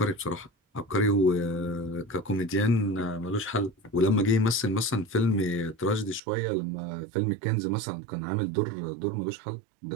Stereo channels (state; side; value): drops out; left; at 6.2 s